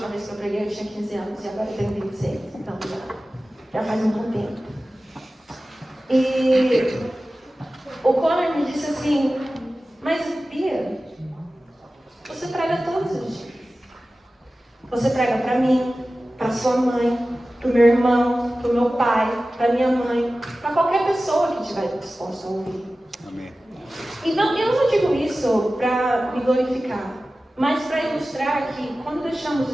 vez que eu preguei eu tinha 15 anos e agora eu tenho 26, então já faz um bom tempo. E o Conor me disse assim: mas Bia, você prega todos os dias. Você prega para mim, para sua mãe, para o meu irmão, para o meu pai, para minha mãe, para qualquer pessoa que estiver disposta a ouvir. Amém. E não, eu não digo isso para me glorificar, mas para ilustrar que quando deixamos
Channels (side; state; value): both; normal; correlation 0.96